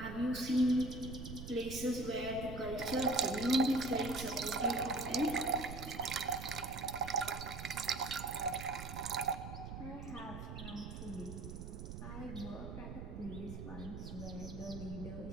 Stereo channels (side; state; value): right; noise; rumble, 8 dB below the sound